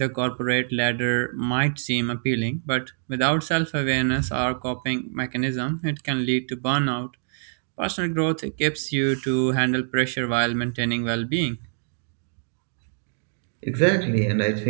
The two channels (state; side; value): silent; left; digital silence